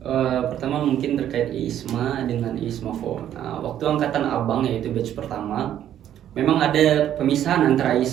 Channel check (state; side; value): quieter; left; 10.9 dB